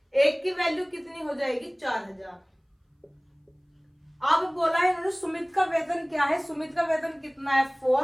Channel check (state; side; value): identical; both; correlation 1.00